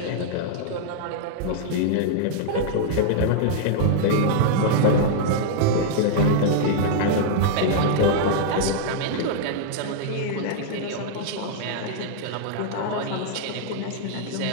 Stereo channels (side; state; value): both; different; correlation -0.01